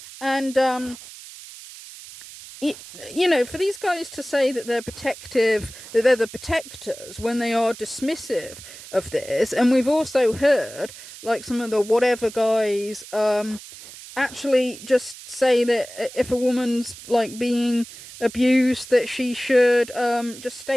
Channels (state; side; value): noise; right; hiss, 16 dB below the sound